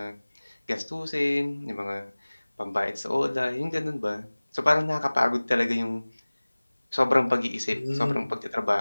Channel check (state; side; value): inverted; both; correlation -1.00